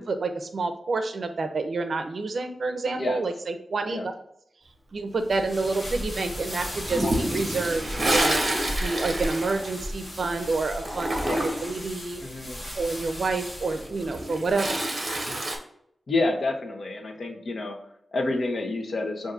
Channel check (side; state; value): both; normal; correlation 0.90